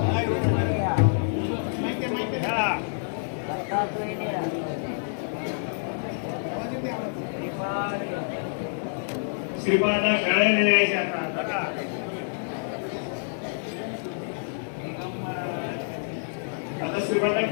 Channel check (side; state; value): right; silent; 60 dB below the other